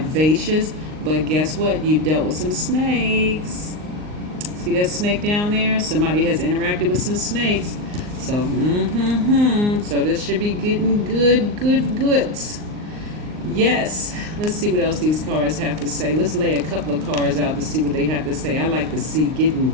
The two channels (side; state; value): left; late; 39 ms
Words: But guess what? You've dealt with some snakes. See that snake down there? Somebody has interacted with some snakes. So, so this should be getting goods. Yes. Let's see what else these cards have to say. Let's lay a couple of cards out to see what they have to say. I like to see, get